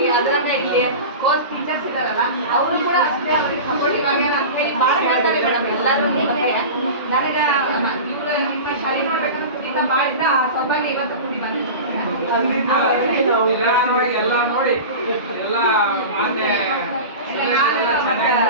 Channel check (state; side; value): inverted; both; correlation -0.30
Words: ಅದರಿಂದ ಇಲ್ಲಿ ಓದ್ ಟೀಚರ್ಸ್ ಇದಾರಲ್ಲ ಅವರು ಕೂಡ ಅಷ್ಟೇ ಅವ್ರಿಗೆ ಸಪೋರ್ಟಿವ್ ಆಗ್ಯಾರ ಅಂತ ಹೇಳಿ ಭಾಳ ಹೇಳ್ತಾರೆ ಮೇಡಮ್ ಎಲ್ಲರೂ ಬಗ್ಗೆ ನನಗೆ ಇವರು ನಿಮ್ಮ ಶಾಲೆ ನೋಡ್ಬೇಕಂತ ಕುಡಿತ ಭಾಳ ಇದ್ದ ಆ ಸೌಭಾಗ್ಯ ಇವತ್ತು ಕುಡಿ ಎಲ್ಲ ನೋಡಿ ಎಲ್ಲ